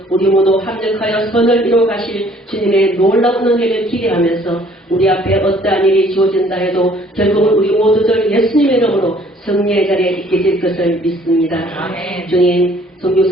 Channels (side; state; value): both; normal; correlation 0.58